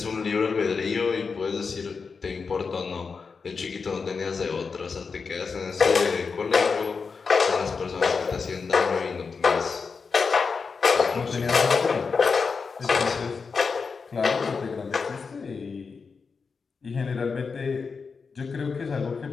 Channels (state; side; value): quieter; right; 5.1 dB